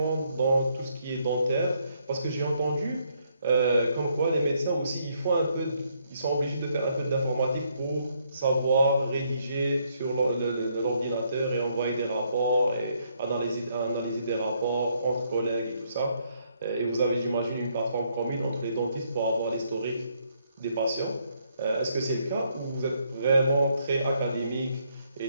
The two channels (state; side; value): inverted; both; correlation -0.72